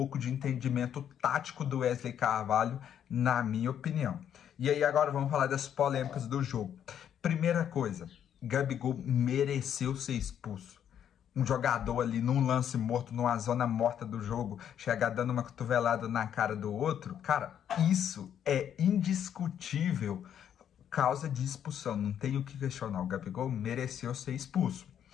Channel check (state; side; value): quieter; right; 9.4 dB